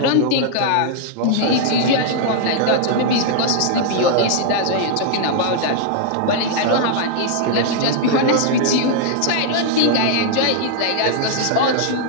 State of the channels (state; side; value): different; both; correlation -0.01